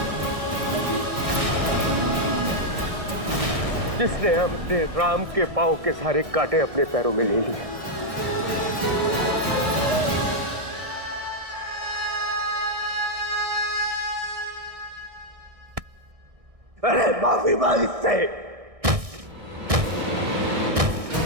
जिसने अपने राम के पांव के सारे कांटे अपने पैरों में ले लिए। अरे माफी मांग इससे।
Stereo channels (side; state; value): left; late; 1.6 ms